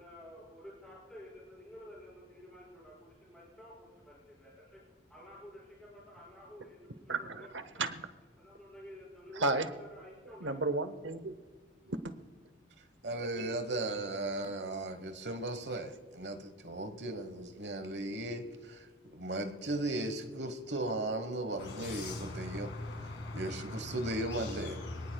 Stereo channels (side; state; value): both; normal; correlation 0.17